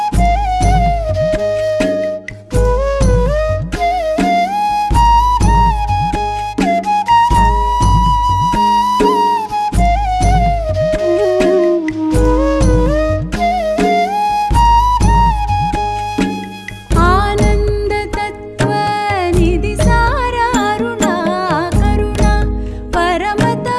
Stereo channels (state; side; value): identical; both; correlation 1.00